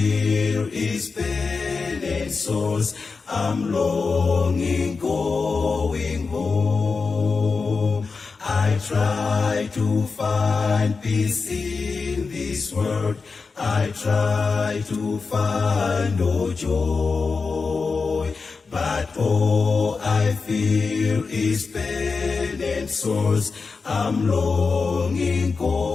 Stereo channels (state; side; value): quieter; right; 4.6 dB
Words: is pain and sorrows. I'm longing, going home. I try to find peace in this world. I try to find no joy. But all I feel is pain and sorrows. I'm longing,